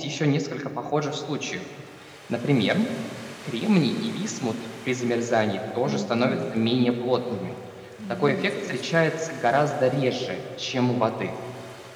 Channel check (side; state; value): both; identical; correlation 1.00